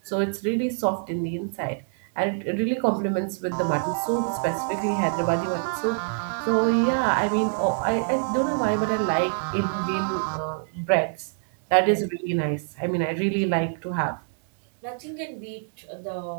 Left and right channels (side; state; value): left; silent; 60 dB below the other